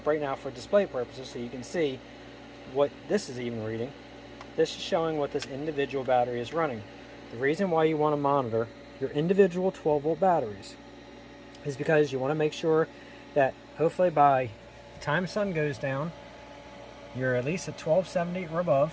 right now for display purposes so you can see what this is even reading, this is showing what this individual battery is running. The reason why you want to monitor your individual 12 volt batteries is because you want to make sure that hopefully by the time the sun goes down, you're at least at 1270 or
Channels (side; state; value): both; identical; correlation 1.00